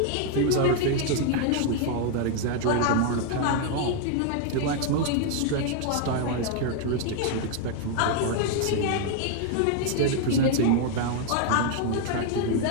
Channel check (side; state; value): both; different; correlation 0.00